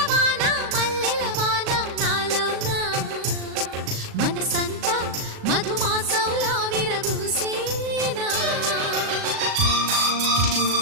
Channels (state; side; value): late; left; 37 ms